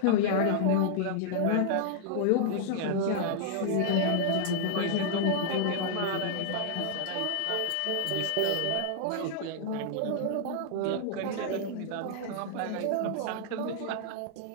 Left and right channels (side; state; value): both; different; correlation -0.01